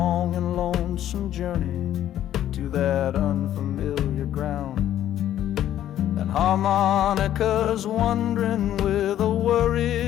and lonesome journey to that unfamiliar ground. And harmonica's wondering with a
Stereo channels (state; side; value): quieter; right; 11.8 dB